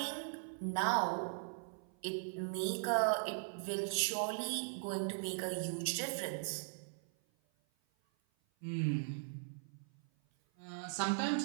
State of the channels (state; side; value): silent; left; 52 dB below the other